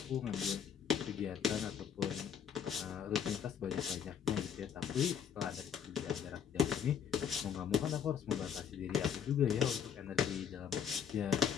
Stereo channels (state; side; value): quieter; right; 8.1 dB